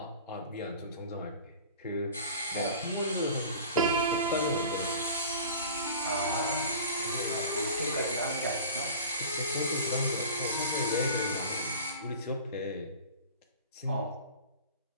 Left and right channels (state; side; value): inverted; both; correlation -0.39